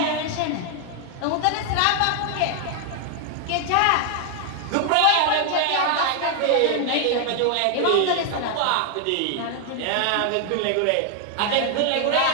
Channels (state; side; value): different; both; correlation 0.00